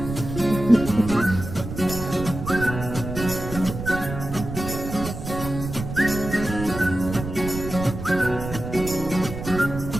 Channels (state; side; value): noise; right; rumble, 8 dB below the sound